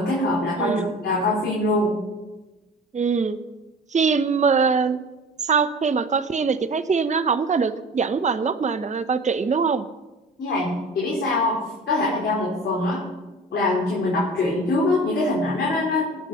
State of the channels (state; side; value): normal; both; correlation 0.39